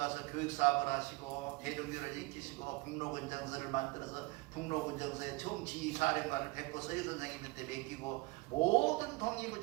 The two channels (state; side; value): quieter; left; 23.5 dB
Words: 교육사업을 하시고 대종교를 익히시고 북로군정서를 만들어서 북로군정서의 총지휘사령관을 백포서희 선생님한테 맡기고 모든 독립의